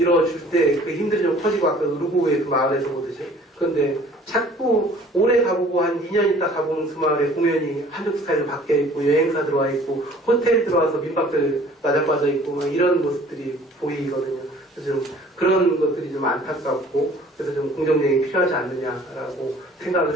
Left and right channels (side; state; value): both; normal; correlation 0.52